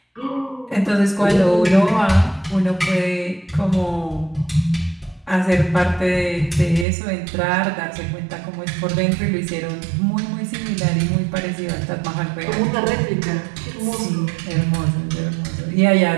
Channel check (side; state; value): left; drops out; at 6.9 s